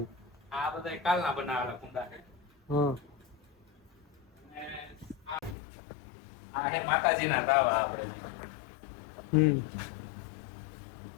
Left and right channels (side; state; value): right; drops out; at 5.6 s